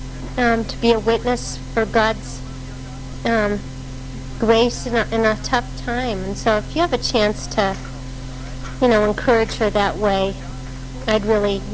to be a witness for God's grace in a tough time. And so if you have a chance to, you know, encourage her that way, I'd really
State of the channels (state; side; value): identical; both; correlation 1.00